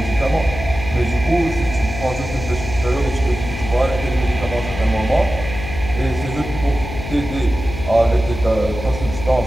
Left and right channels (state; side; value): noise; left; hum, 8 dB below the sound